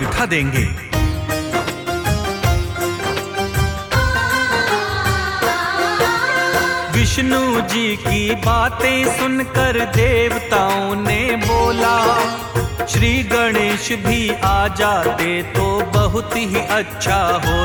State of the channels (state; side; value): identical; both; correlation 1.00